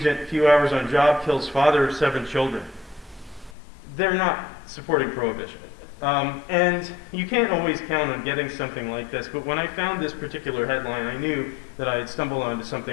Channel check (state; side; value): drops out; right; at 3.6 s